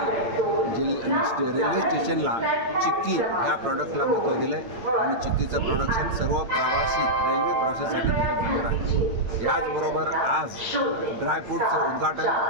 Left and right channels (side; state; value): left; late; 8.8 ms